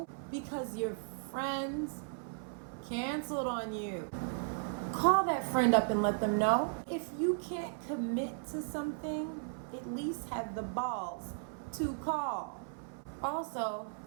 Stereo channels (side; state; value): left; silent; 54 dB below the other